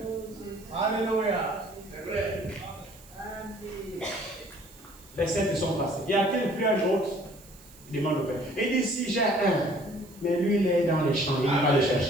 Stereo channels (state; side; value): noise; right; hiss, 23 dB below the sound